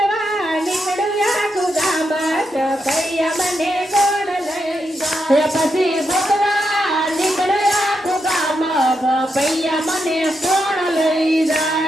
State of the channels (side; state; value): both; normal; correlation 0.83